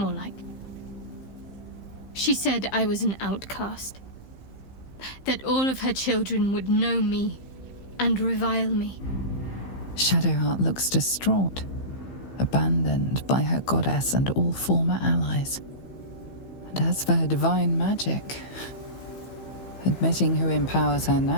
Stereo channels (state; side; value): late; right; 15 ms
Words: like. She said I was an outcast. That all of her children would know me and revile me. Shadowheart looks distraught, abandoned by her goddess and all former allies. And as for her divine magic, admitting who empowers her